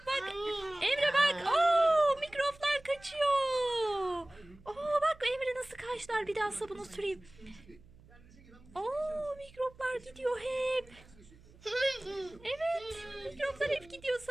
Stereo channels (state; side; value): noise; right; hum, 24 dB below the sound